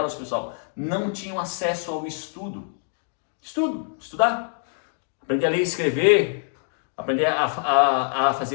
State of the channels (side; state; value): right; silent; digital silence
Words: pessoal, não tinham acesso ao estudo. Estudar. Aprender a ler e escrever, aprender a